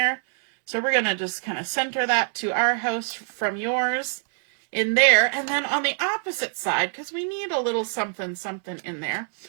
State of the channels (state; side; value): silent; left; digital silence